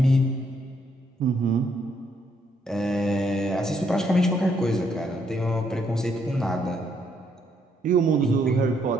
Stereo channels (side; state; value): both; normal; correlation 0.72